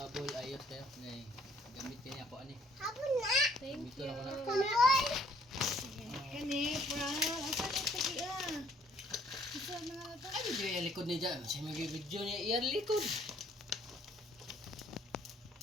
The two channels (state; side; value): normal; both; correlation 0.62